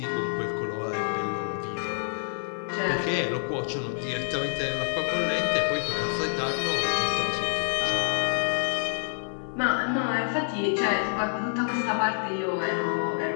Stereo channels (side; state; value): right; silent; digital silence